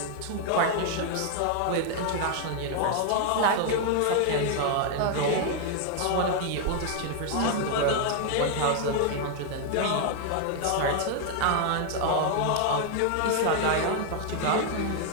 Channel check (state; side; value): different; both; correlation 0.00